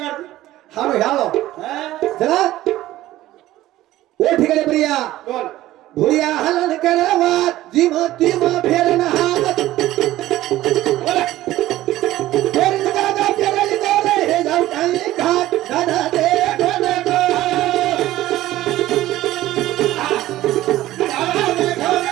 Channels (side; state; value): left; quieter; 15.3 dB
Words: हालो ह्यालो चला ओ ठिकाणी प्रिया बोल भुरिया हलन करावा जिम तिम फेरन हात बोल फेरन दादा फेरली दोरे हे जाऊ काही घाट दादा दे कोण गो